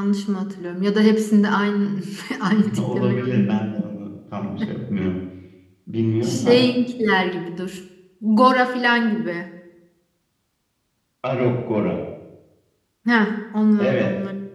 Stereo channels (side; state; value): both; identical; correlation 1.00